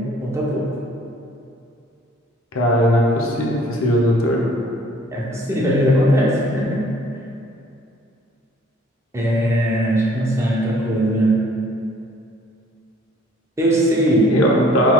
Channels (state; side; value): normal; both; correlation 0.56